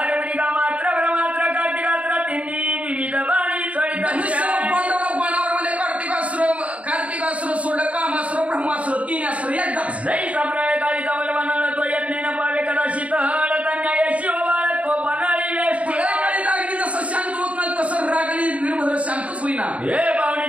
कार्तिकास्त्र सोडलं कामास्त्र ब्रह्मास्त्र 3 अस्त्र एकदाच जय साप्रय काळी तवल बनाला तो यज्ञेन पावे कदाचित हळतन्याय शिवबाळ तो बनाळी वेष्टी काळी लागली जसं शांत होत नाही तसं रागणी वीरभद्र शांतच होईना. हे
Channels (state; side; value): late; left; 0.066 ms